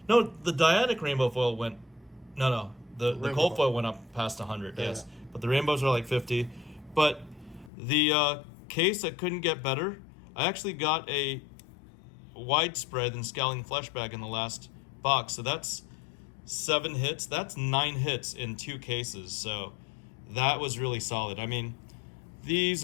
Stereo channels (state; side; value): drops out; right; at 7.7 s